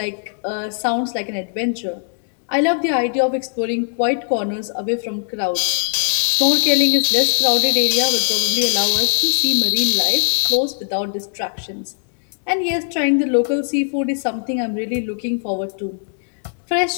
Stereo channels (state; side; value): silent; right; digital silence